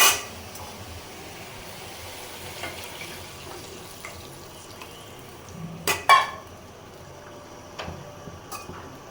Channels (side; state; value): both; identical; correlation 1.00